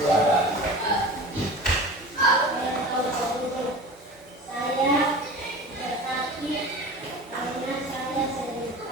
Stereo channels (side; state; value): both; normal; correlation 0.35